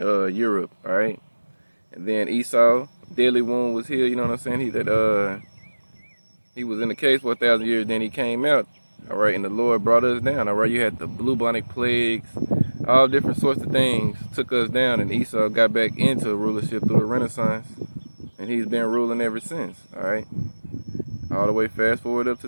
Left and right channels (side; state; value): both; inverted; correlation -1.00